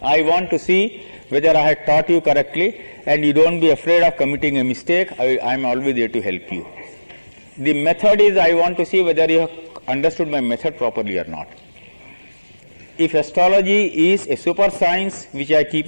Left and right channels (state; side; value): inverted; both; correlation -1.00